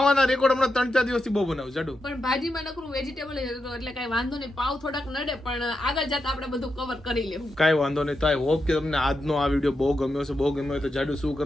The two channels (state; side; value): normal; both; correlation 0.87